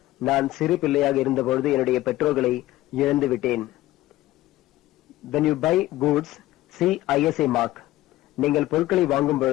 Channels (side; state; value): right; quieter; 16.2 dB